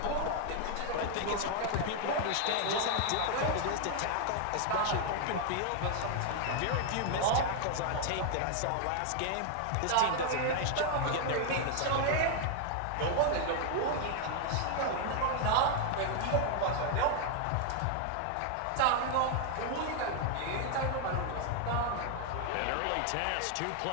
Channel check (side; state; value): both; different; correlation 0.00